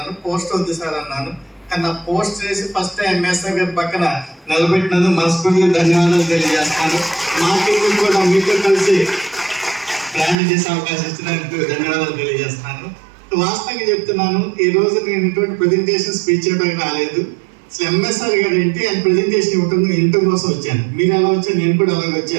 పోస్ట్ వద్దు సార్ అన్నాను. కానీ నా పోస్ట్ చేసి ఫస్ట్ ఎంఎస్ఆర్ గారి పక్కన నిలబెట్టినందుకు మనస్ఫూర్తిగా ధన్యవాదాలు తెలియజేస్తాను. మార్కెటింగ్ కూడా మీతో కలిసి ప్రయాణం చేసే అవకాశం ఇచ్చినందుకు ధన్యవాదాలు తెలియజేస్తాను. వాస్తవంగా చెప్తున్నాను, ఈ రోజు నేను ఇటువంటి ప్రెజెంటేషన్ స్పీచ్ చేయడానికి రాలేదు. అసలు ఎంఎస్ఆర్ గారు ఏంటి ఆయన ప్రెజెంటేషన్ ఇవ్వటం కోసం వచ్చాను. మీరు ఎలా వచ్చాను, నేను కూడా అలాగే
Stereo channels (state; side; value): drops out; left; at 10.4 s